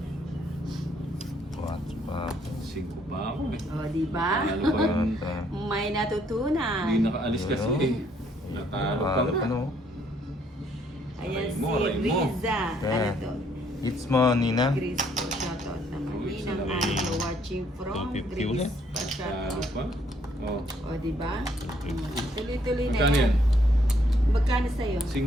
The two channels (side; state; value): both; normal; correlation 0.68